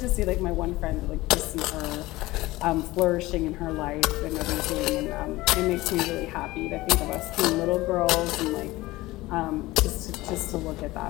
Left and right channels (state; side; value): quieter; right; 19.1 dB